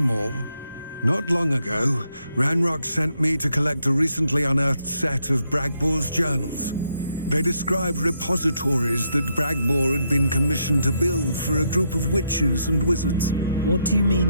Not long ago, Ranrock sent me to collect a recently unearthed set of Bragbor's journals. They described repositories that Bragbor had been commissioned to build for a group of witches and wizards. What do you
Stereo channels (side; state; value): both; inverted; correlation -0.78